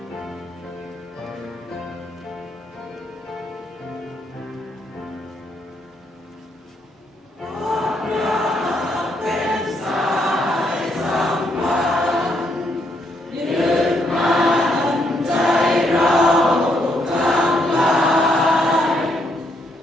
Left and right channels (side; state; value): both; normal; correlation 0.75